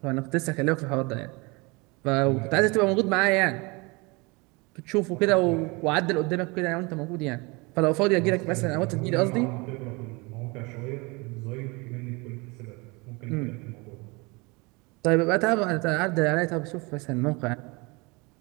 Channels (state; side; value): quieter; left; 27.0 dB